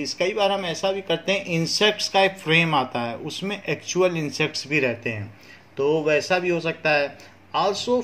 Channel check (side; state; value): both; identical; correlation 1.00